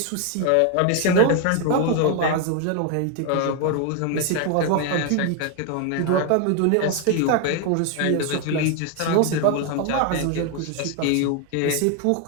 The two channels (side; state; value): both; different; correlation 0.01